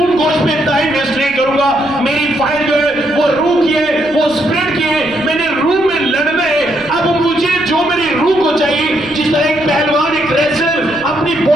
गोश्त पे टाइम वेस्ट नहीं करूंगा। मेरी फाइट जो है वो रूह की है, वो स्पिरिट की है, मैंने रूह में लड़ना है। अब मुझे जो मेरी रूह को चाहिए, जिस तरह एक पहलवान एक रेसलर अपनी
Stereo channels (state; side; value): noise; right; rumble, 21 dB below the sound